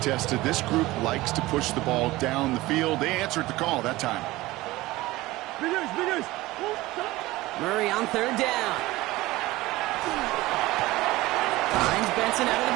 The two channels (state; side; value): quieter; left; 18.8 dB